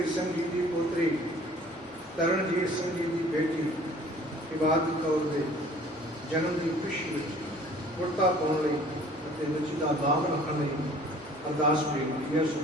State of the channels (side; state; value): left; noise; hum, 29 dB below the sound